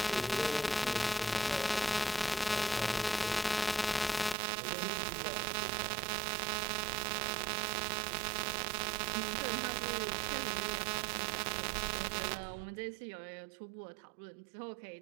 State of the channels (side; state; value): left; drops out; at 4.4 s